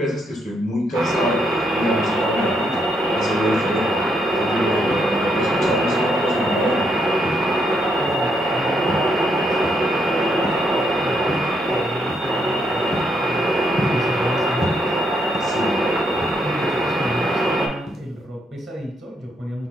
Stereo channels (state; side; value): normal; both; correlation 0.76